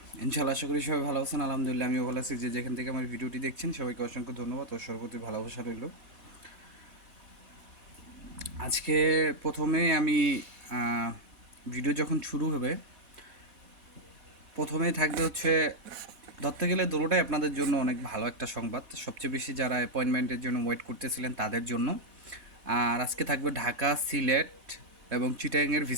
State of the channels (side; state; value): left; late; 4.1 ms